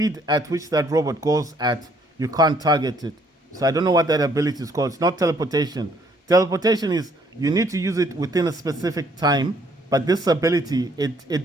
at which that robot goes at, you can't target it. So I don't know what that ability is called. It's not teleportation. Teleportation is, you need to use it within a specific time, but this ability, it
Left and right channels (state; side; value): normal; both; correlation 0.65